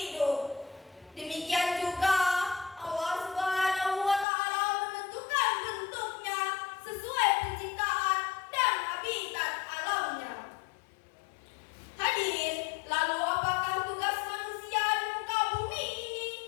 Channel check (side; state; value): right; drops out; at 4.2 s